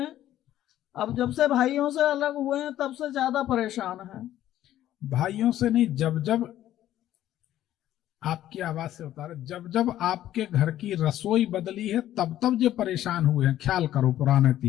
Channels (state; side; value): quieter; right; 12.8 dB